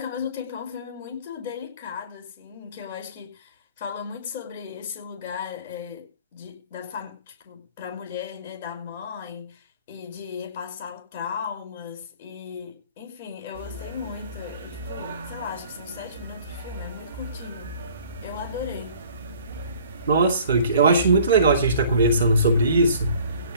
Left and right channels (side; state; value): both; inverted; correlation -0.52